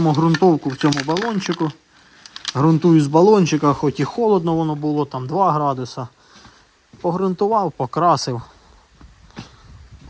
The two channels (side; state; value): both; identical; correlation 1.00